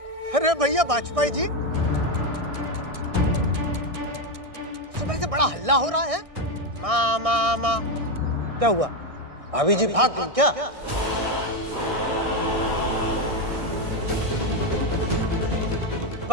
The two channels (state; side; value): late; left; 1.6 ms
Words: अरे भैया वाजपेयी जी, सुबह से बड़ा हल्ला हो रहा है। माँ माँ माँ, क्या हुआ? भाभी जी भाग गई क्या?